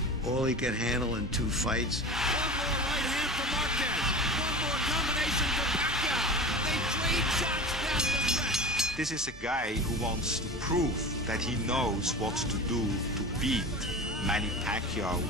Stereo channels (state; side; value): normal; both; correlation 0.32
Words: all he could handle in 2 fights. One more right hand for Marquez. One more combination for Pacquiao. They trade shots down the stretch. This is a guy who wants to prove that he knows what to do to beat Manny Pacquiao